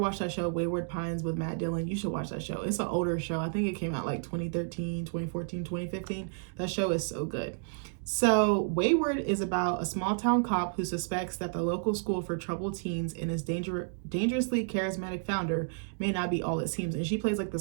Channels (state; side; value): silent; left; digital silence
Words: that show, Wayward Pines, with Matt Dillon? You should watch that show. It's an older show. I think it came out like 2013, 2014, 2015. That show is so good. So Wayward is about a small town cop who suspects that the local school for troubled teens and its dangerously charismatic founder may not be all it seems. And she plays like